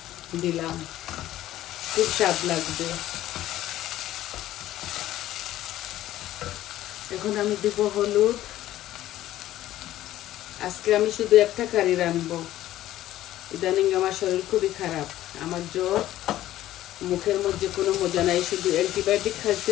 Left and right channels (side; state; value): right; quieter; 14.0 dB